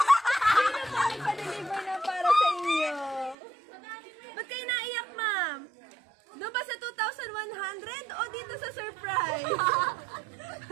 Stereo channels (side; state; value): left; drops out; at 3.4 s